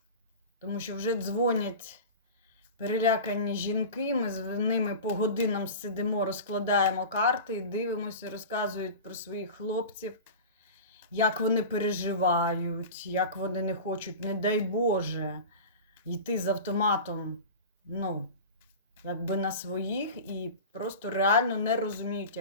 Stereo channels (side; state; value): both; inverted; correlation -0.32